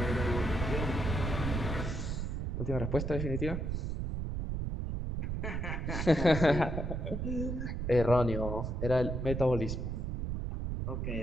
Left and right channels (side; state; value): right; noise; rumble, 2 dB below the sound